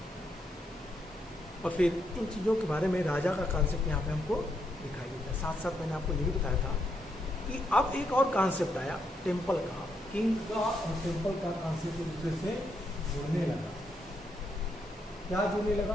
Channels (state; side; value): normal; both; correlation 0.79